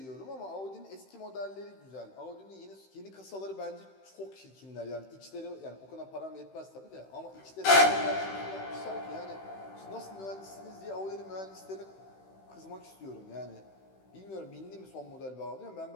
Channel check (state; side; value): late; right; 16 ms